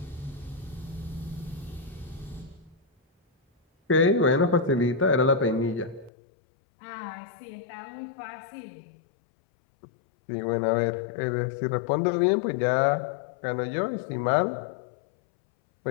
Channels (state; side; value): drops out; right; at 6.1 s